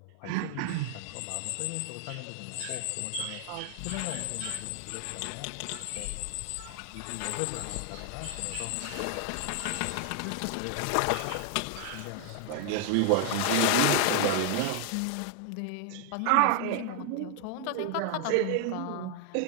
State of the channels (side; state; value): both; different; correlation 0.00